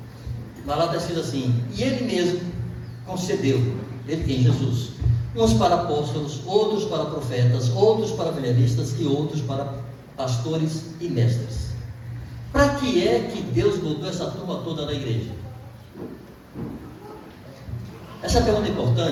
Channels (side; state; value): both; identical; correlation 1.00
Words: mas lá está escrito assim: e Ele mesmo concedeu, Ele quem? Jesus, uns para apóstolos, outros para profetas, outros para evangelistas e outros para pastores e mestres. Para que é que Deus botou essa turma toda na igreja? Essa pergunta é